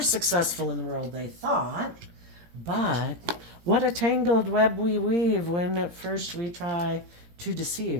successful in the world, they thought. But what a tangled web we weave when at first we try to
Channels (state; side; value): late; left; 17 ms